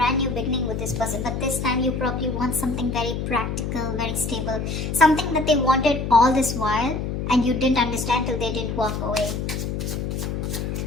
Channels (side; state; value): left; noise; hum, 3 dB below the sound